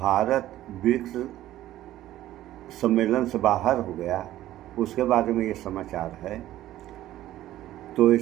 ब्रिक्स सम्मेलन से बाहर हो गया, उसके बारे में ये समाचार है। तो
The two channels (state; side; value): quieter; left; 14.1 dB